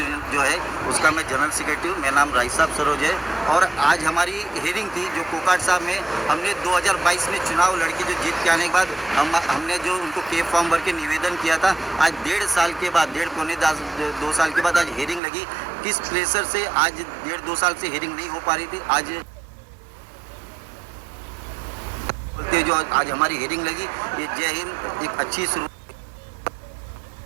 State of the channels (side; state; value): left; drops out; at 15.2 s